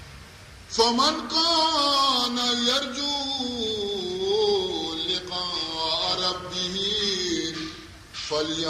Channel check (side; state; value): both; identical; correlation 1.00